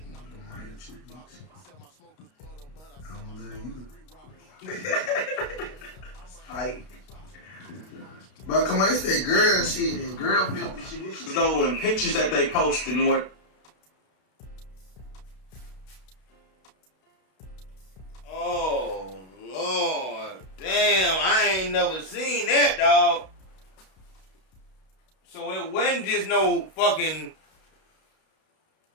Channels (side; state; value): right; late; 32 ms